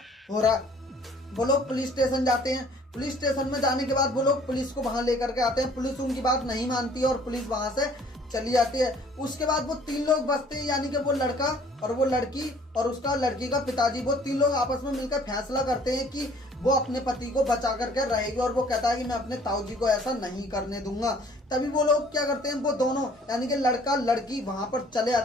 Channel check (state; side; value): normal; both; correlation 0.56